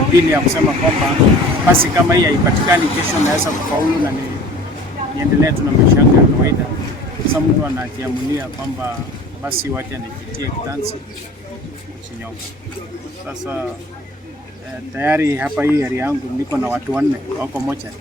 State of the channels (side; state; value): both; normal; correlation 0.44